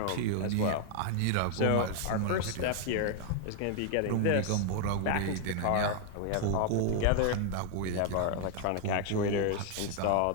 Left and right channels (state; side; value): different; both; correlation 0.00